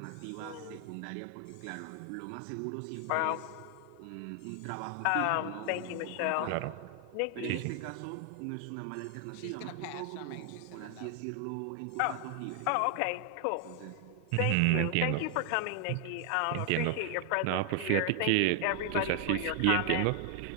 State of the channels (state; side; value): different; both; correlation 0.00